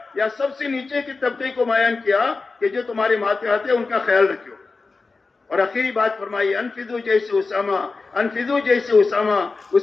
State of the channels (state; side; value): quieter; right; 4.0 dB